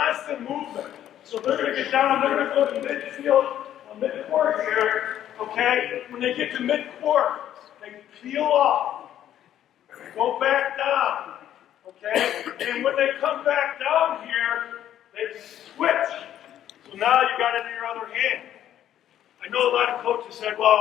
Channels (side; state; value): right; quieter; 11.3 dB